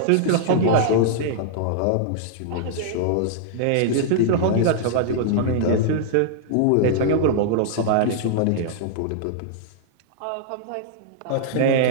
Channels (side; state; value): both; different; correlation -0.01